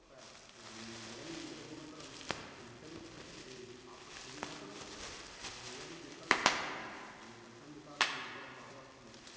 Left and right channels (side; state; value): both; identical; correlation 1.00